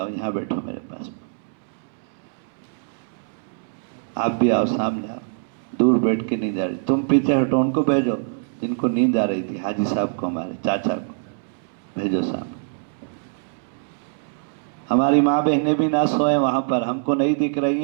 یہاں بیٹھو میرے پاس، آپ بھی آؤ، سامنے آؤ، دور بیٹھ کے نیند آ رہی، تم پیچھے ہٹو، ان کو بھیجو جن کو نیند آ رہی تھی، حاجی صاحب کو، ہمارے چاچا کو بھیجو سامنے۔ ہماری ماں بہنیں بھی نہ سوئیں وہاں پر، ہم کو نہیں دکھ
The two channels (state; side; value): silent; left; 63 dB below the other